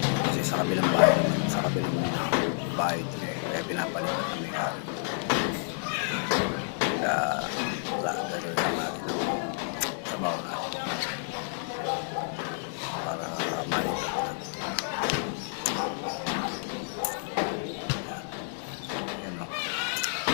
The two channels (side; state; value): right; silent; digital silence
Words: Kasi sa kabilang bahay naman, sa kabilang bahay ito kaya pinapalipat na may-ari. Kaya wala, gano'n lang natin ang trabaho natin para malipat na. Yan o,